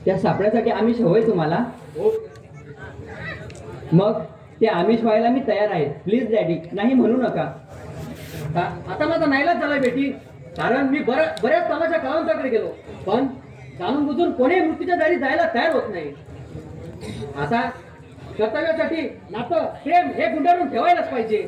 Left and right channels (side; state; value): both; identical; correlation 1.00